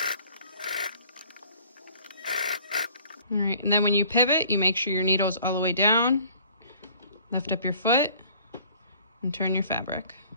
All right, and then when you pivot, you make sure your needle's all the way down, lift up your foot, and turn your fabric.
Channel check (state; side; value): inverted; both; correlation -0.54